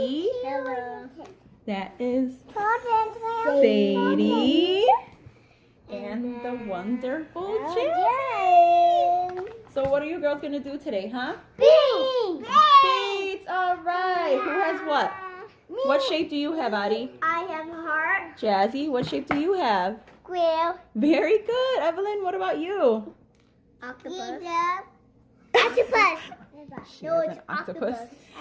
Hello. That is Sadie. And the wonderful Jen. So what are you girls going to do today, huh? Beads. Beads. All right. Who has what? Me. What shape do you have, Addie? I have a heart. Jazzy, what shape do you have? Square. Very good. Evelyn, what about you? Octopus. Octopus. She has an octopus.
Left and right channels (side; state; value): both; identical; correlation 1.00